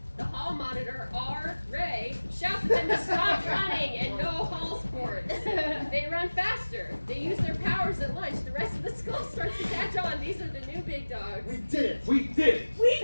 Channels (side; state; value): both; inverted; correlation -1.00